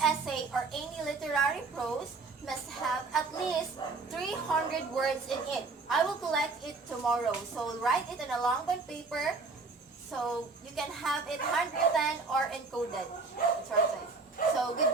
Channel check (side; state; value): left; quieter; 4.0 dB